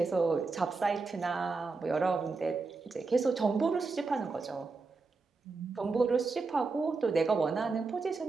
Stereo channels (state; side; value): quieter; left; 4.1 dB